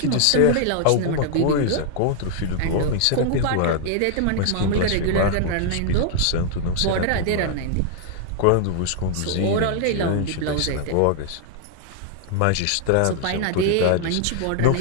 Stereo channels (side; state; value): both; different; correlation 0.00